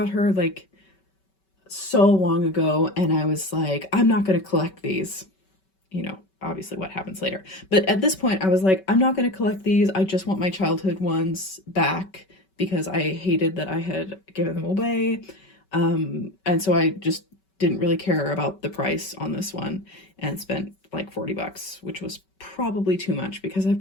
her like so long ago, and I was like, I'm not going to collect these. You know, obviously what happens later. But at this point, I was like, I'm not going to collect these. I just want my childhood ones back because I hated that I had given them away. And so I just didn't really care about the price on this one and spent like $40, which was probably too much because I've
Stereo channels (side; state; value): right; late; 5.2 ms